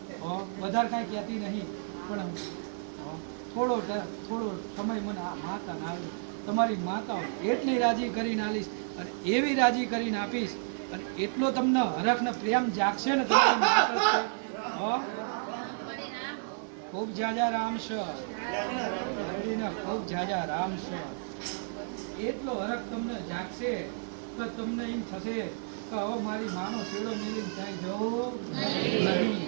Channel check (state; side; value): silent; left; digital silence